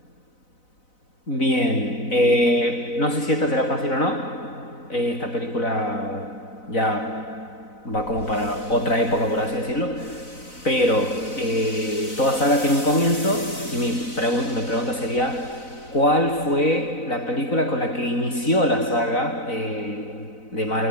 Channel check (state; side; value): late; right; 4.0 ms